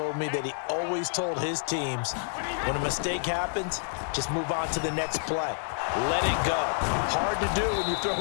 me, that he always told his teams, when a mistake happens, just move on to the next play. Let it go. Hard to do when you've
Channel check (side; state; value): right; silent; digital silence